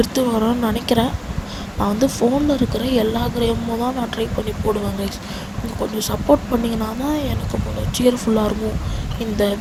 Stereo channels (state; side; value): identical; both; correlation 1.00